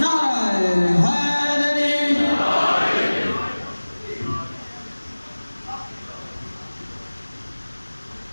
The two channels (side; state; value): both; inverted; correlation -1.00